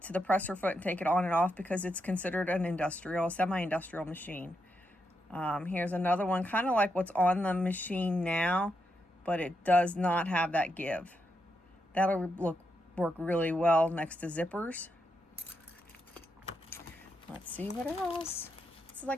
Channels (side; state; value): both; normal; correlation 0.83